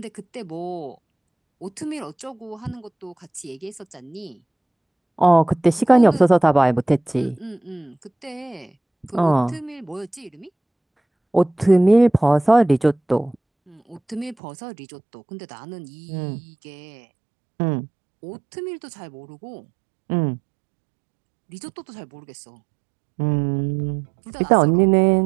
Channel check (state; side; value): drops out; left; at 14.4 s